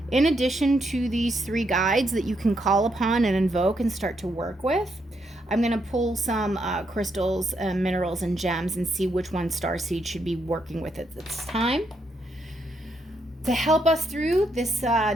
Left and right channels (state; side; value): normal; both; correlation 0.78